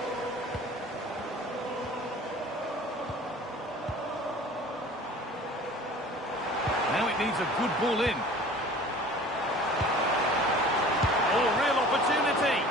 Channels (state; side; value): normal; both; correlation 0.44